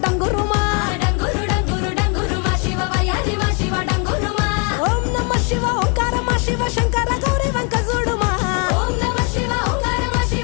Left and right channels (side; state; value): right; quieter; 35.6 dB